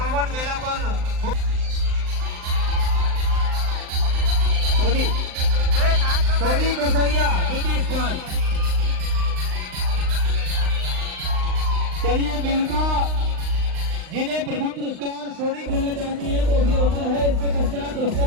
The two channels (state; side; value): late; left; 39 ms